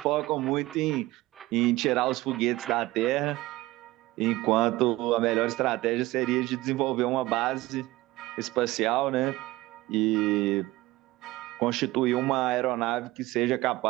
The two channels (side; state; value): left; quieter; 18.7 dB